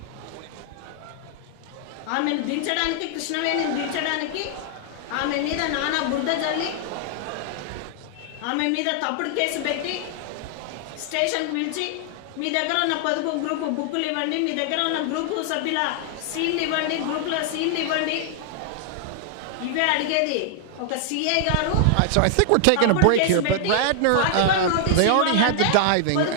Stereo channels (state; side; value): different; both; correlation 0.00